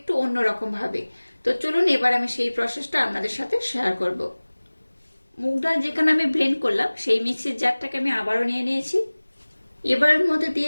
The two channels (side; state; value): both; inverted; correlation -1.00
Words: অন্যরকম ভাবে। তো চলুন এবার আমি সেই প্রসেসটা আপনাদের সাথে শেয়ার করব। মুগ ডাল যেখানে আমি ব্লেন্ড করলাম সেই মিক্সির জারটাকে আমি আবারও নিয়ে নিয়েছি। এবার এর মধ্যে দিয়ে